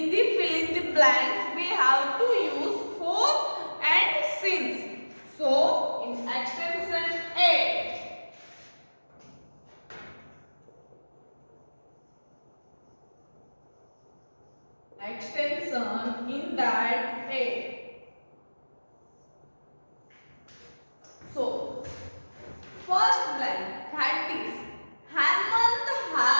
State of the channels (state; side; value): inverted; both; correlation -1.00